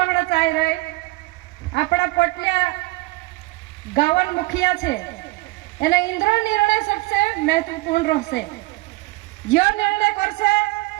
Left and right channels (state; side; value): quieter; left; 22.0 dB